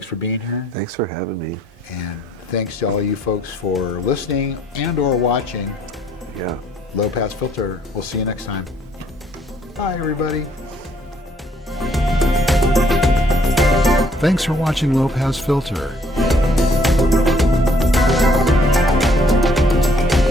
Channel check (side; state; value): both; normal; correlation 0.65